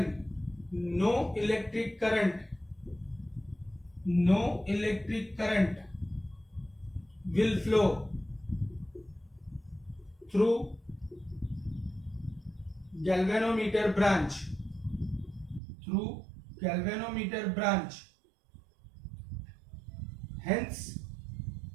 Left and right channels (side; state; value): left; drops out; at 15.6 s